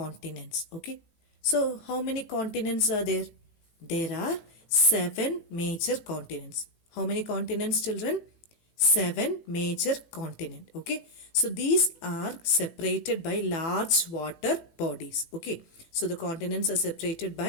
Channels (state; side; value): late; right; 18 ms